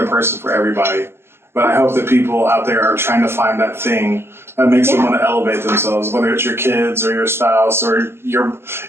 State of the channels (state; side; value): late; left; 0.12 ms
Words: person for everybody, but I hope that people out there are trying to find that thing that makes them want to elevate themselves, whether it's your kids or your spouse or your